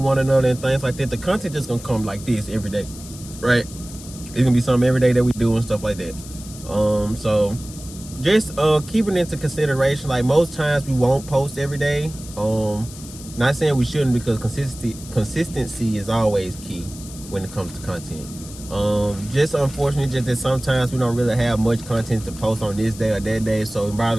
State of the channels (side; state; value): left; noise; hiss, 16 dB below the sound